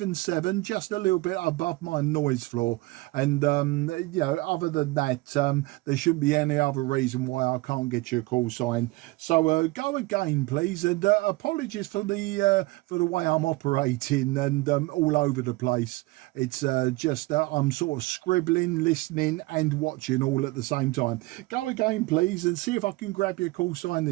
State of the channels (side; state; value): left; quieter; 21.7 dB